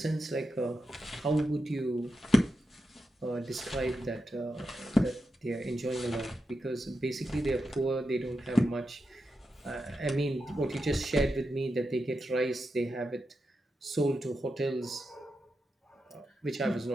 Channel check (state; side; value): normal; both; correlation 0.88